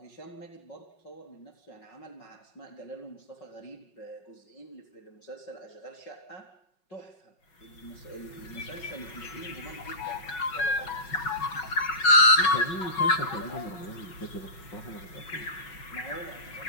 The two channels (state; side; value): late; right; 5.5 ms